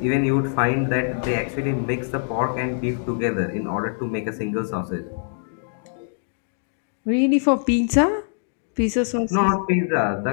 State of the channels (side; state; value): right; silent; digital silence